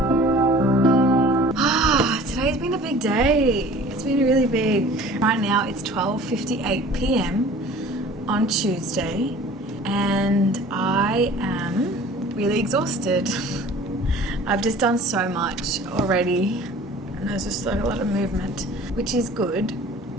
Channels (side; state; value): both; normal; correlation 0.46